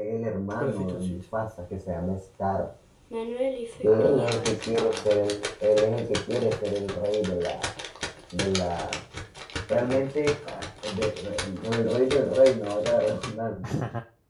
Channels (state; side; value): identical; both; correlation 1.00